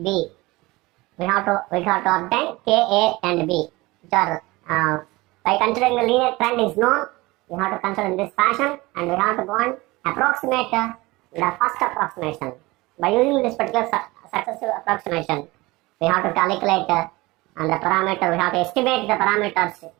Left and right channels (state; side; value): quieter; left; 21.6 dB